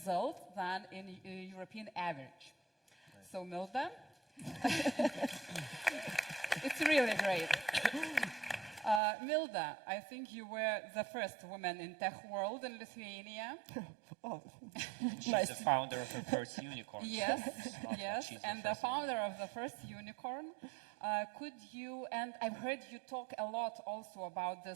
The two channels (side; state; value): left; drops out; at 9.0 s